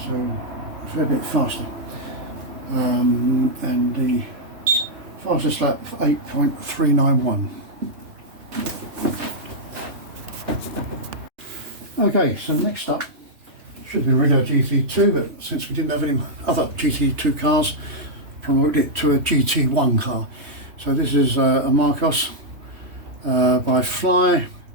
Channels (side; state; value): left; late; 3.1 ms